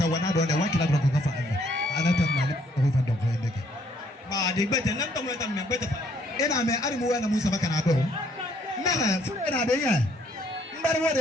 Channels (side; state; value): both; normal; correlation 0.66